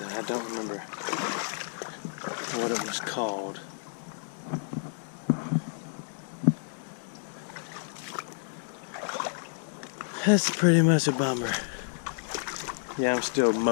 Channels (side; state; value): right; silent; digital silence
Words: I don't remember what it was called. That's pretty much a bummer. Yeah, I'm still